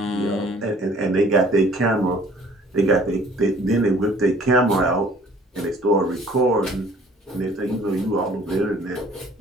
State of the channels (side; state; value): both; normal; correlation 0.54